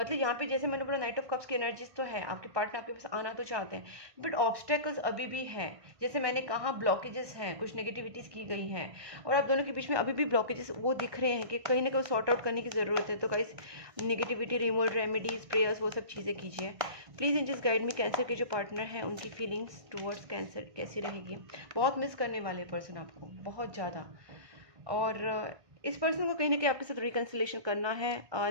यहाँ पे जैसे मैंने बोला नाइट ऑफ कप्स की एनर्जीज तो है, आपके पार्टनर आपके पास आना तो चाहते हैं, बट ऑब्स्टेकल्स अभी भी हैं। जैसे मैंने कहा ब्लॉकेजेस हैं, कुछ नेगेटिविटीज़ की गई हैं, और आप दोनों के बीच में अभी भी ब्लॉकेजेस वो दिख रहे हैं कि कहीं ना कहीं सॉर्ट आउट करने की ज़रूरत है। तो guys negativity removal, remedies, prayers, वो सब चीज़ें कीजिए। Please angels guide me, Cancer के जो पार्टनर हैं उनकी फीलिंग्स टूवर्ड्स कैंसर कैसी रहेगी। बहुत मिस करने वाले पर्सन आपको, बहुत ज़्यादा, और इस पर्सन को कहीं ना कहीं आपके साथ रिकन्सिलेशन करना है।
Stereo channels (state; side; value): late; left; 1.6 ms